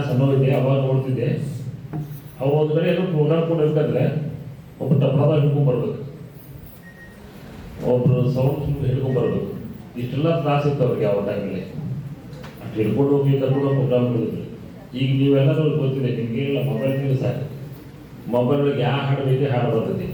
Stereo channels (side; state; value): both; identical; correlation 1.00